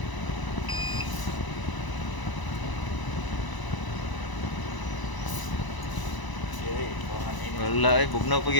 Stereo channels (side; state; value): right; late; 1.0 ms